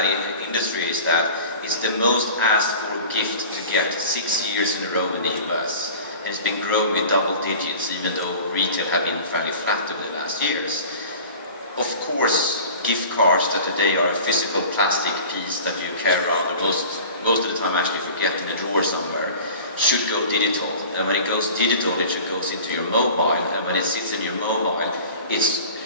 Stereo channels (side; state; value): both; inverted; correlation -0.40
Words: industry is that it's the most asked for gift to get 6 years in a row in the US. And it's been growing with double digits, even though retail have been fairly flat over the last years. Of course, gift cards that today are a physical plastic piece that you carry around, or most of the time actually forget in a drawer somewhere, should go digital. And when it goes digital, it should go into your mobile. And when it sits in your mobile, it